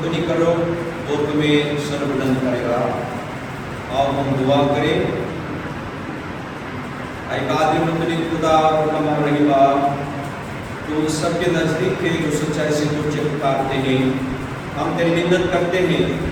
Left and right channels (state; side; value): identical; both; correlation 1.00